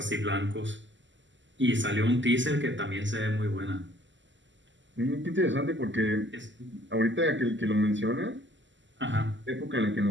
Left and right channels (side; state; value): left; late; 0.54 ms